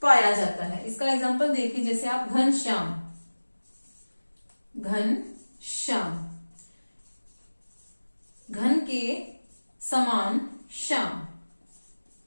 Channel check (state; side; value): inverted; both; correlation -1.00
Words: पाया जाता है। इसका एग्जांपल देखिए, जैसे आप घनश्याम, घनश्याम, घन के समान श्याम,